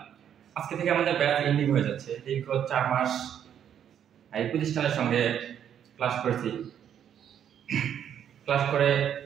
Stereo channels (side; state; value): left; quieter; 9.3 dB